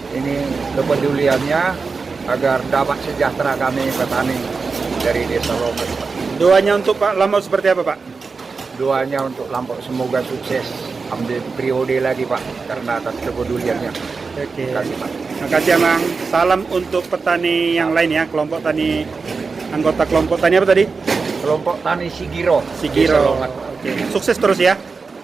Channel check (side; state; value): left; quieter; 4.6 dB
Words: ini kepeduliannya agar dapat sejahtera kami petani dari Desa Lombok. Doanya untuk Pak Lampau seperti apa Pak? Doanya untuk Lampau semoga sukses ambil periode lagi Pak, karena atas kepeduliannya. Oke. Terima kasih Pak. Terima kasih Amang. Salam untuk petani yang lain ya, kelompok tani, anggota kelompok tani apa tadi? Kelompok Tani Sigiro. Sigiro. Desa Longat. Oke. Sukses terus ya.